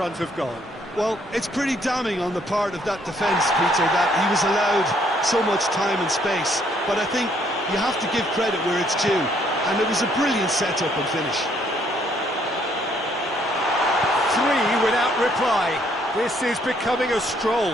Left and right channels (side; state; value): both; normal; correlation 0.67